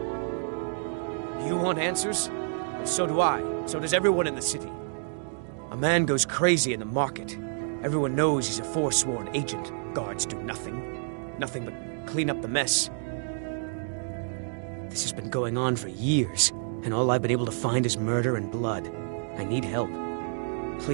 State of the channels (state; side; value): silent; left; digital silence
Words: You want answers? Well, so do I. So does everyone in the city. A man goes crazy in the market. Everyone knows he's a forsworn agent. Guards do nothing. Nothing but clean up the mess. This has been going on for years, and all I've been able to find is murder and blood. I need help.